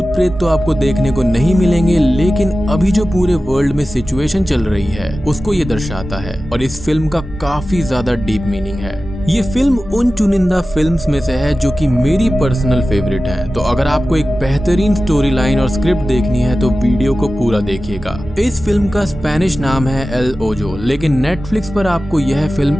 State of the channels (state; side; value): normal; both; correlation 0.95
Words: प्रेत तो आपको देखने को नहीं मिलेंगे, लेकिन अभी जो पूरे वर्ल्ड में सिचुएशन चल रही है उसको ये दर्शाता है और इस फिल्म का काफी ज्यादा डीप मीनिंग है। ये फिल्म उन चुनिंदा फिल्म्स में से है जो कि मेरी पर्सनल फेवरेट है। तो अगर आपको एक बेहतरीन स्टोरी लाइन और स्क्रिप्ट देखनी है तो वीडियो को पूरा देखिएगा। इस फिल्म का स्पेनिश नाम है एल ओजो, लेकिन नेटफ्लिक्स पर आपको यह